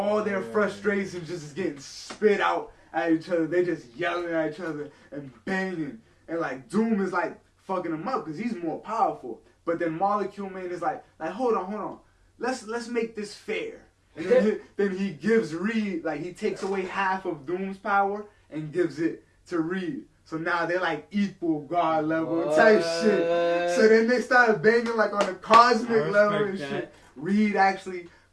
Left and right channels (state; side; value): identical; both; correlation 1.00